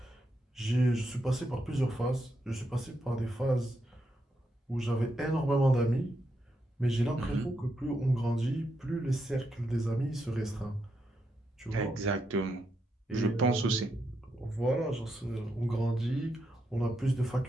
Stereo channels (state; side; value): normal; both; correlation 0.82